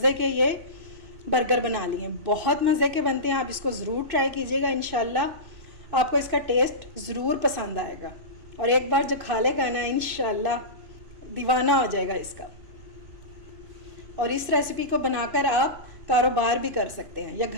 के ये बर्गर बना लिए। बहुत मज़े के बनते हैं, आप इसको ज़रूर ट्राई कीजिएगा। इंशाल्लाह आपको इसका टेस्ट ज़रूर पसंद आएगा और एक बार जो खा लेगा ना इंशाल्लाह दीवाना हो जाएगा इसका। और इस रेसिपी को बनाकर आप कारोबार भी कर सकते हैं या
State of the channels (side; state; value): left; late; 2.6 ms